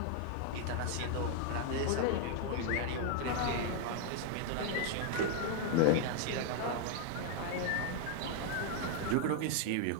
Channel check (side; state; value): both; different; correlation 0.00